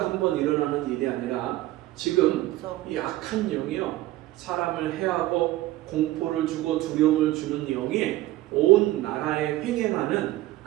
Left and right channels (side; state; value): left; quieter; 16.6 dB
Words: 한번 일어나는 일이 아니라 지금 이 악한 영이요, 사람을 해하고 공포를 주고 두려움을 주는 영이 온 나라에 횡행하는